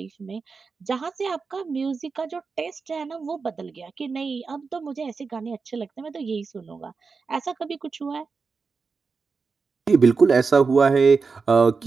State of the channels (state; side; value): quieter; left; 4.8 dB